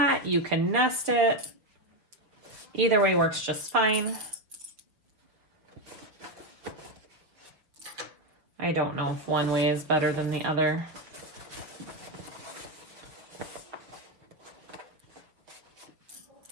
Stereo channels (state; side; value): late; left; 6.1 ms